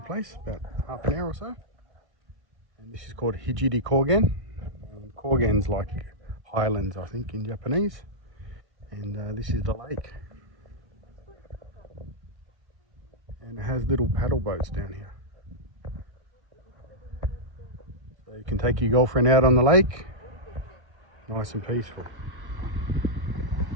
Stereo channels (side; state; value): left; late; 1.6 ms